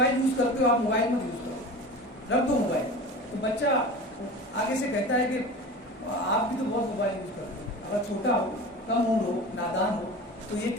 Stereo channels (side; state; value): both; normal; correlation 0.34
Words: یوز کرتے ہو، آپ موبائل مت یوز کرو، رکھ دو موبائل۔ تو بچہ آگے سے کہتا ہے کہ آپ بھی تو بہت موبائل یوز کرتے ہو، اگر چھوٹا ہو، کم عمر ہو، نادان ہو تو یہ